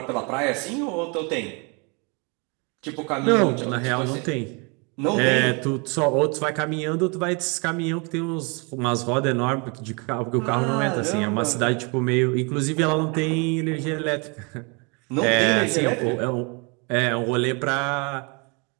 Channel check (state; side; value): quieter; left; 32.2 dB